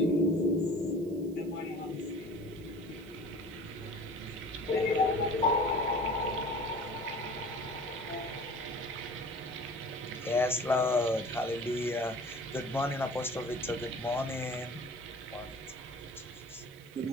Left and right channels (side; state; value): right; noise; hiss, 25 dB below the sound